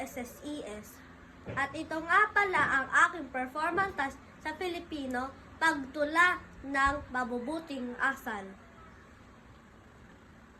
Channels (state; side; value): identical; both; correlation 1.00